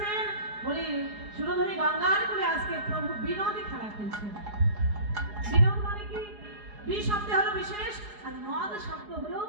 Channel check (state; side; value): late; left; 4.8 ms